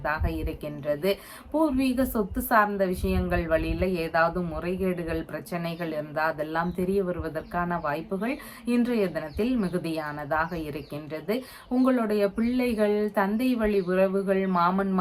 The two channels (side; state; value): both; identical; correlation 1.00